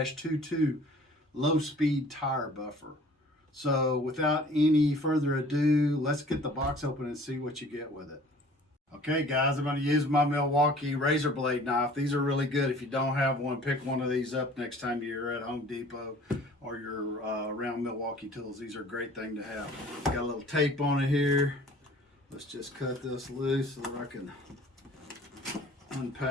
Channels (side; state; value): both; normal; correlation 0.50